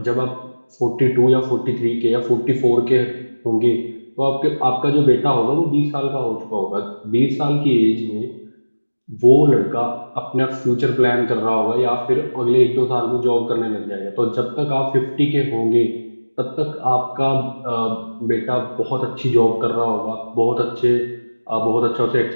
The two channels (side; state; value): both; inverted; correlation -1.00